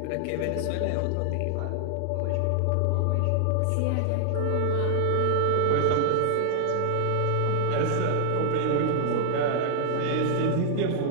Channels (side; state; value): both; different; correlation -0.01